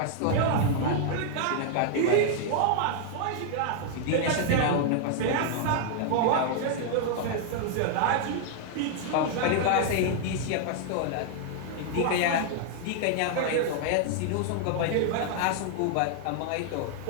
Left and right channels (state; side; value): different; both; correlation 0.00